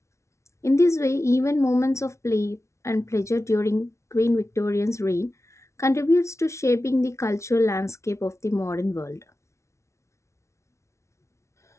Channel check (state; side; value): late; right; 0.13 ms